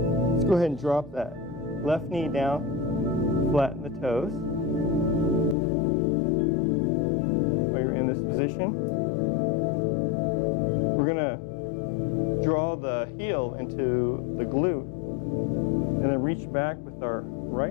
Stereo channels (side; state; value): right; drops out; at 5.6 s